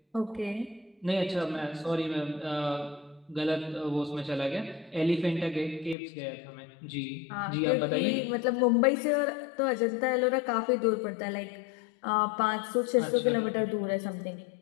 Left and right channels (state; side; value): drops out; right; at 6.0 s